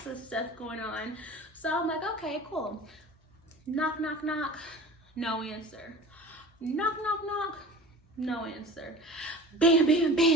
of stuff going on. So I'm like, okay, cool. Knock, knock, knock, no answer. Knock, knock, knock, no answer. Bam, bam,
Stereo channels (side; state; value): both; normal; correlation 0.38